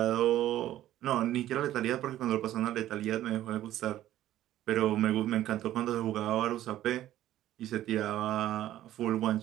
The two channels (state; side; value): quieter; left; 13.3 dB